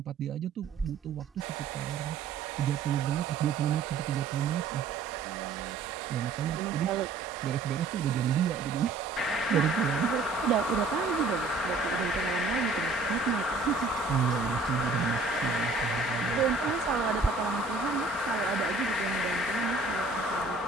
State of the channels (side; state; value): left; quieter; 3.6 dB